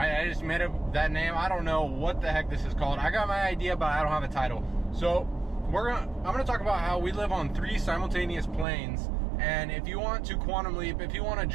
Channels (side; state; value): left; drops out; at 8.7 s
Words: I just made up that name. I don't know what the heck this is called. I got my idea, but I don't have a title. So I'm gonna talk about how we live on 3 simultaneous planes. And if you want to quantum leap, if you want to